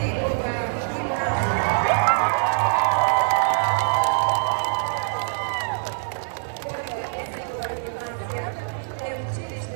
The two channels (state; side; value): silent; left; digital silence